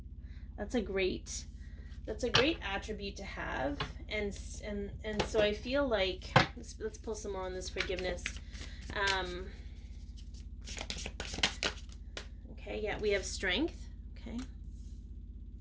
That's a great attribute to have, and so I feel like let's pull some more on this forgiveness. Okay, yeah, we have strength. Okay.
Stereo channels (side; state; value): both; identical; correlation 1.00